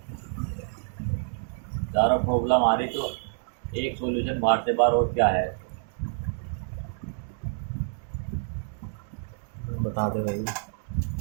ज़्यादा प्रॉब्लम आ रही तो एक सॉल्यूशन बाहर से बाहर, और क्या है? बता दे भाई,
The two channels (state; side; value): silent; left; 59 dB below the other